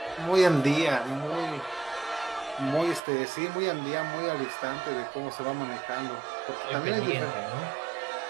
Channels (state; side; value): drops out; left; at 3.0 s